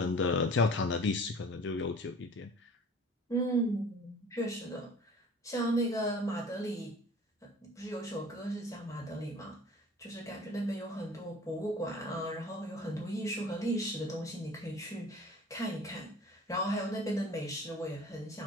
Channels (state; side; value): normal; both; correlation 0.45